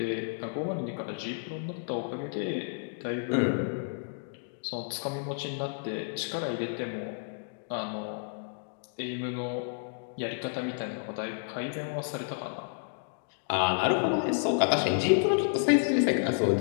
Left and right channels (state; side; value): silent; right; digital silence